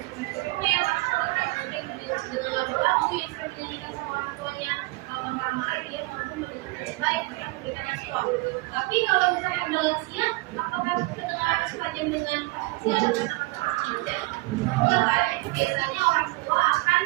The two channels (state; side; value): quieter; left; 23.0 dB